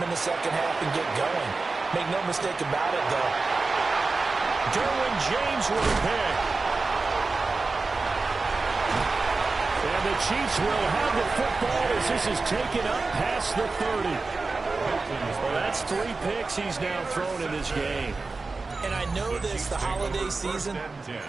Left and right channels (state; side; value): quieter; left; 3.9 dB